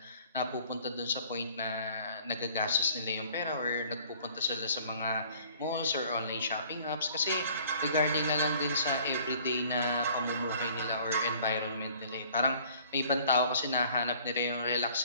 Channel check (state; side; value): inverted; both; correlation -0.54